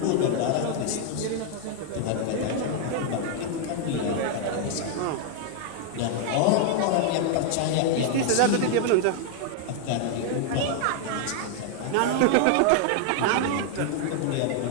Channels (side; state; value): both; different; correlation 0.00